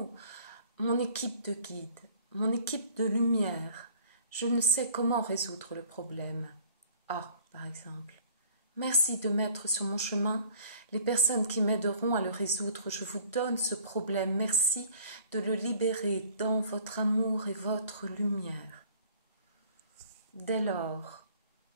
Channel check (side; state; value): both; inverted; correlation -0.52